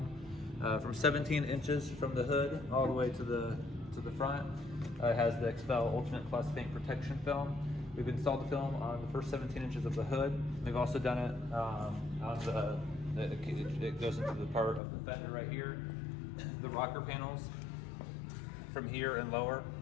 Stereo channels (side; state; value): right; drops out; at 14.8 s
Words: From 17 inches from the hood all the way to the front. It has the Expel Ultimate Plus paint protection film. We've installed the film on the first 17 inches of the hood. We've also done it on it goes into the part of the fender right here. The rocker panels from here and lower